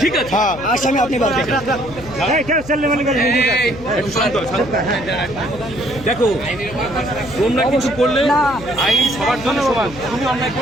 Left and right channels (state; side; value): noise; left; hum, 16 dB below the sound